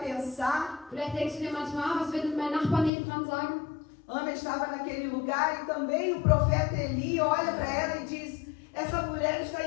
Vielleicht denkst du dir manchmal, was wird mein Nachbar nebendran sagen? Ana estava naquele lugar e também o profeta Eli olha para ela e diz: essa mulher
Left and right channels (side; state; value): right; drops out; at 2.9 s